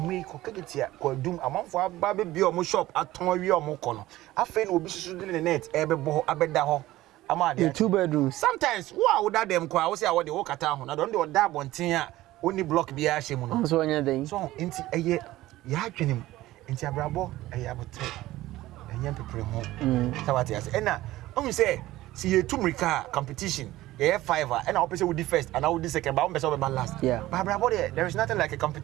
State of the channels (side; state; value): left; quieter; 16.5 dB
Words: ko kegetia ko dum amanfo aba be bi o mo shop aton awie o mo ko no. Afa na obi susu de net e be bo abeda ho. Ama de 2 bedrooms. Sometimes wo da dem kwa wo say wo de wo kata ho na don de da abonten a oni block bi a hye mu no. So onya den. So enti eye ya adwenem. Enti abrabo eye abotre. Enye pepere ho. Sawati ase. Ena o say see ye tumrika competition. Yeah, 5 and I'll say we first and I will do second, but I'm be last. Yeah. But there is nothing like a